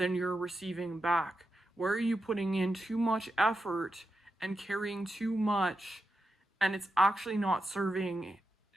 you're receiving back? Where are you putting in too much effort and carrying too much, and it's actually not serving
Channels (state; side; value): normal; both; correlation 0.88